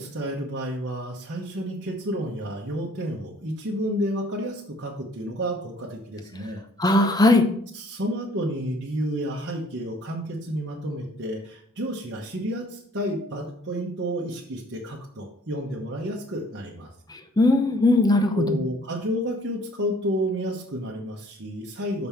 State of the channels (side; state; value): both; normal; correlation 0.58